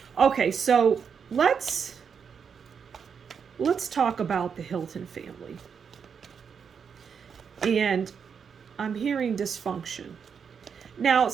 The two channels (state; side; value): quieter; left; 6.7 dB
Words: Okay, so let's talk about the Hilton family. And I'm hearing dysfunction. Now,